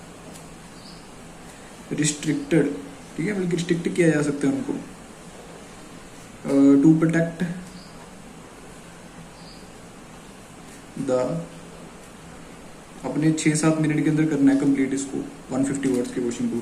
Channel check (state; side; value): identical; both; correlation 1.00